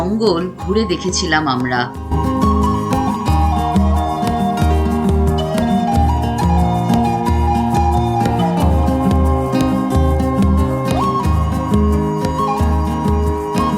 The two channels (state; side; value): identical; both; correlation 1.00